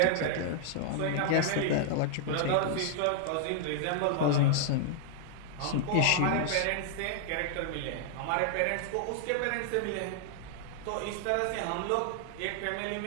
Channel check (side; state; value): both; different; correlation -0.01